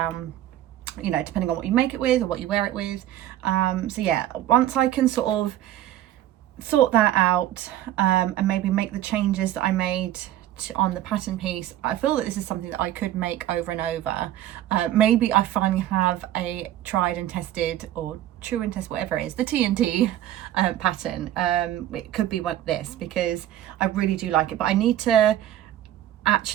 you know, depending on what you make it with or what you wear it with. So yeah, once I can sort of sort that out, and maybe make the changes that I made on the pattern piece, I feel that this is something that I could make over and over. Maybe I finally have a tried and tested, or true and test, whatever it is, the TNT pattern. It could be this, because I really do like it, but I need to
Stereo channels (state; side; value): quieter; left; 12.8 dB